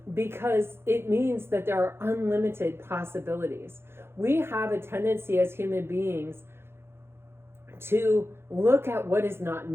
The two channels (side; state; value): left; late; 0.12 ms